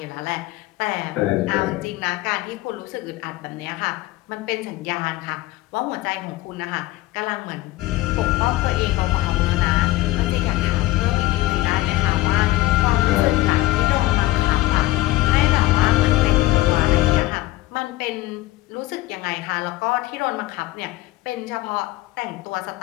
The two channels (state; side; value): quieter; right; 17.8 dB